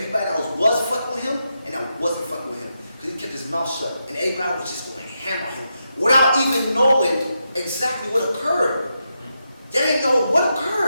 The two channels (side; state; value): both; inverted; correlation -0.85